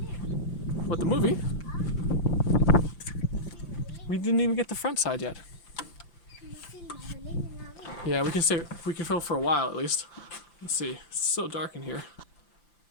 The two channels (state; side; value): late; right; 5.8 ms